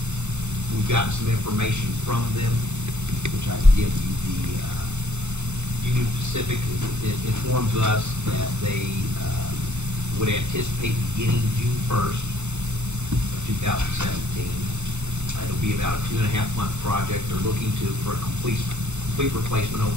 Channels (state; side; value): late; left; 0.83 ms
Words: We've gotten some information from them, which I can give you. The Union Pacific informs us that they would anticipate beginning June 1st of 2017. It'll be about a 2.5-month project. They're looking for a complete replacement of